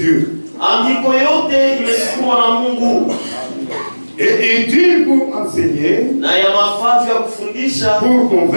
Et utile pour enseigner, pour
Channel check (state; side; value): inverted; both; correlation -1.00